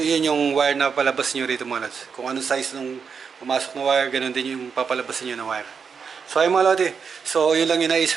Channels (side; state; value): left; quieter; 6.1 dB